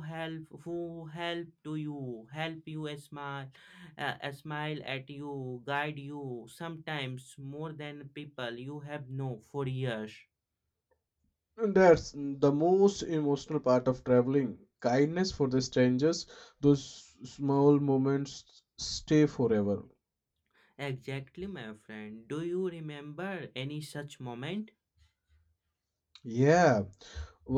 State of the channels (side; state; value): both; identical; correlation 1.00